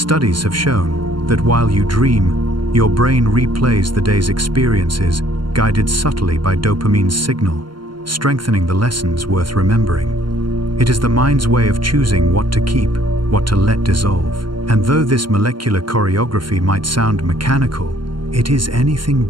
have shown that while you dream, your brain replays the day's experiences, guided subtly by dopamine's signal, strengthening the lessons worth remembering. It is the mind's way of choosing what to keep, what to let dissolve. And though this molecular choreography might sound mechanical, it is anything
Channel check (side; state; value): left; late; 0.72 ms